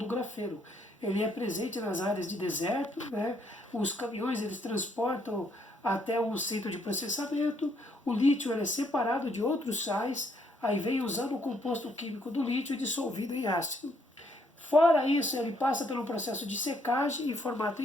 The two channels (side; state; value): both; normal; correlation 0.70